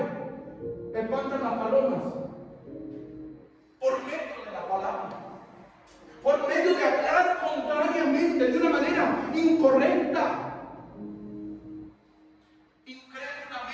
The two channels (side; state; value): both; identical; correlation 1.00